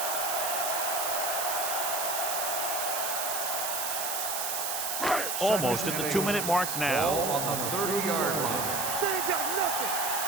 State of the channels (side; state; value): right; noise; hiss, 1 dB below the sound